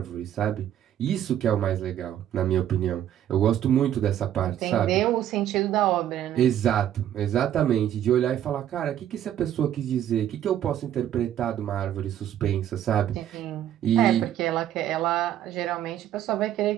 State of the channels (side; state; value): left; quieter; 11.1 dB